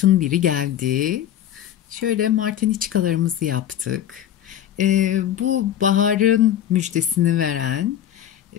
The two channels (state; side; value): quieter; right; 10.9 dB